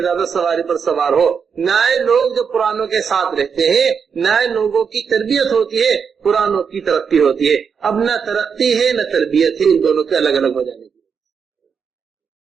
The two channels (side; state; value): left; quieter; 6.4 dB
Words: سواری پر سوار ہو۔ نئے لوگ جو پرانوں کے ساتھ رہتے ہیں، نئے لوگوں کی تربیت ہوتی ہے، پرانوں کی ترقی ہوتی ہے۔ اب نہ ترقی ہے نہ تربیت ہے، ان دونوں کے الگ الگ ہو جانے کی